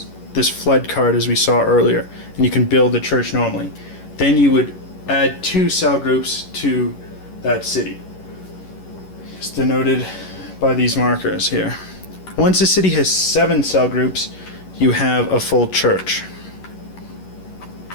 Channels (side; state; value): right; late; 11 ms